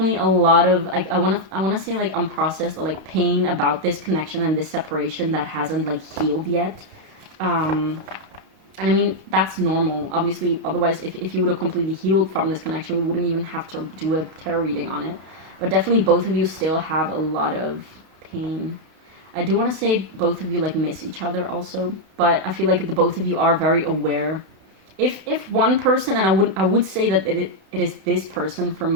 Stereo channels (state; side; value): late; left; 32 ms